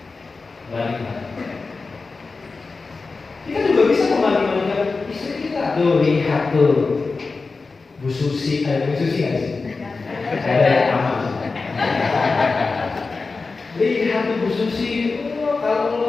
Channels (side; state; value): right; quieter; 4.1 dB